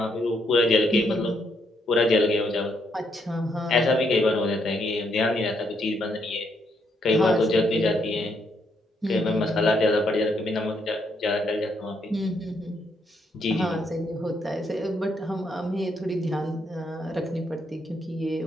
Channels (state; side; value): normal; both; correlation 0.75